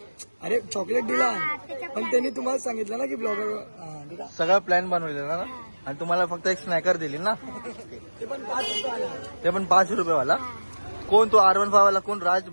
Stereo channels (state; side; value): inverted; both; correlation -1.00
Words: अरे चॉकलेट दिला पण त्यांनी तुम्हाला सांगितलं ना की ब्लॉगर सगळं प्लॅन बनवलेलं ना आणि तुम्हाला फक्त एक स्नॅकर दिली ना. ते पण 5 रुपये वाला. कोण तो R15 वाला कोण राज